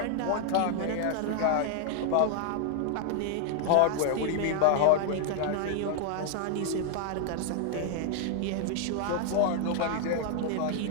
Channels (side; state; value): both; different; correlation 0.00